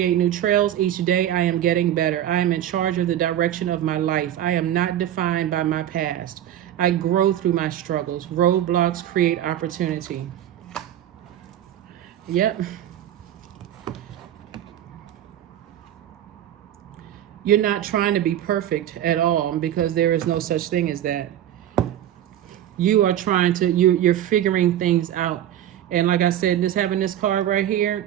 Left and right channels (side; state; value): left; quieter; 11.5 dB